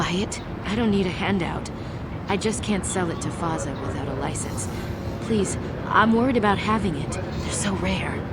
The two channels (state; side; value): identical; both; correlation 1.00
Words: it? I don't need a handout. I just can't sell it to Faza without a license. Please, I'm worried about having it. They're so rare.